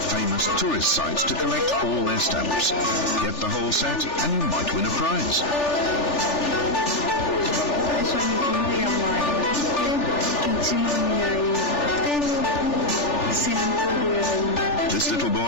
famous tourist sites to collect all their stamps. Get the whole set and you might win a prize. This little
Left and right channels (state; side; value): late; right; 3.4 ms